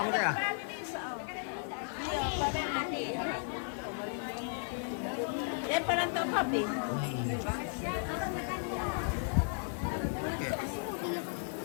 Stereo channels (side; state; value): right; silent; 54 dB below the other